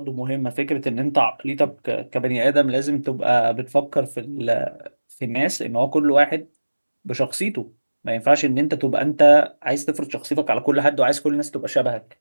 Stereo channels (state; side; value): inverted; both; correlation -1.00